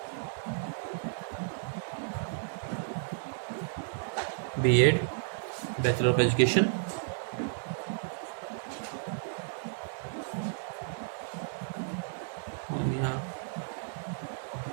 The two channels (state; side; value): silent; left; digital silence